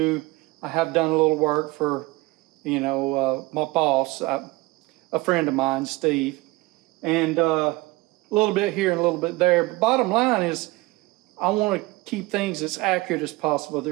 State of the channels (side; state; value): left; quieter; 21.9 dB